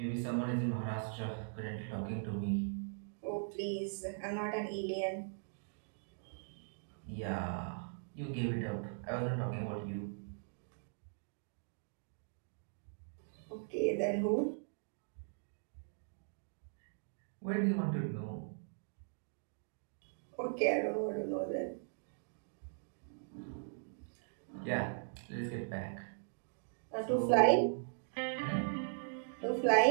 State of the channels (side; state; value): left; silent; digital silence